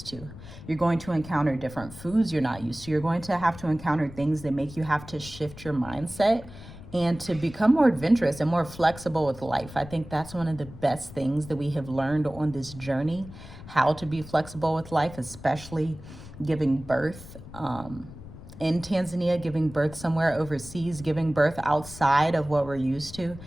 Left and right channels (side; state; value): left; noise; rumble, 16 dB below the sound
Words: to. You're going to encounter different foods you're not used to. You're going to have to encounter things that make you have to shift your mindset and to become more adventurous and more flexible with life. I think that's one of the best things that we have learned on this journey, how to be flexible with life, especially giving birth in Tanzania, giving birth somewhere overseas, giving birth outside of what we're used to.